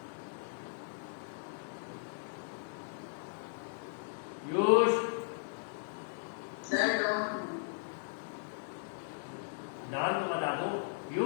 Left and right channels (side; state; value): right; silent; digital silence